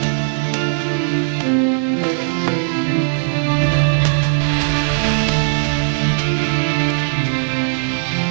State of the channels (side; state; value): left; silent; digital silence